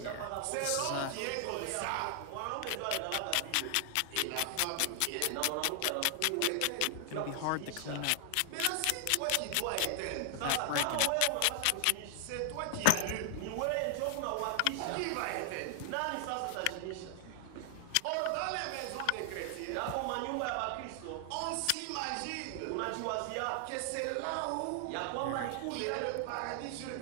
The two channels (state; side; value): different; both; correlation 0.00